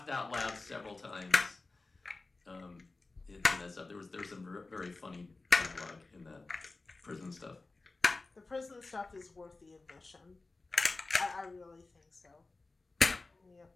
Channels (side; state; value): right; quieter; 3.5 dB